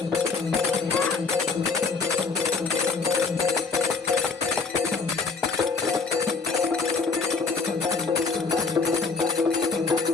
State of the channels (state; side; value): quieter; right; 4.6 dB